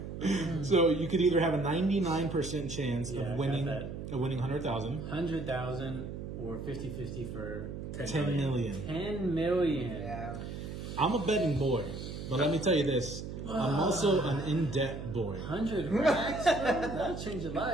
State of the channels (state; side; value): noise; right; hum, 8 dB below the sound